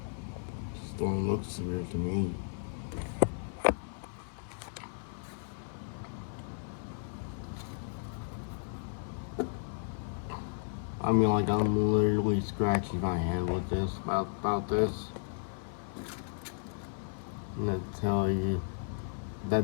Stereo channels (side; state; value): right; silent; 55 dB below the other